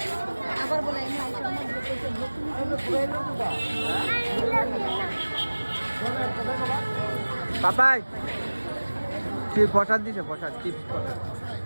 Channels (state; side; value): inverted; both; correlation -1.00